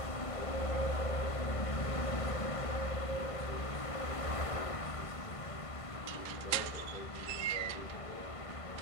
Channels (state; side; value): late; right; 1.5 ms